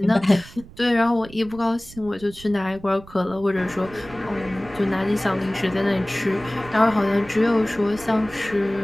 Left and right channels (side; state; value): right; noise; rumble, 19 dB below the sound